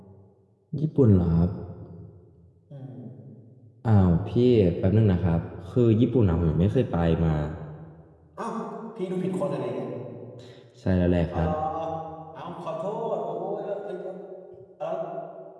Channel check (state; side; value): identical; both; correlation 1.00